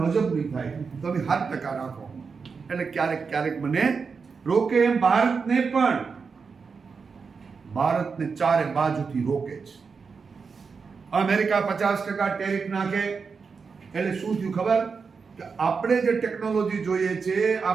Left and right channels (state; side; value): quieter; left; 5.3 dB